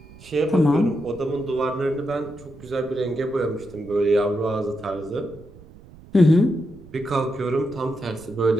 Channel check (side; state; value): right; noise; rumble, 21 dB below the sound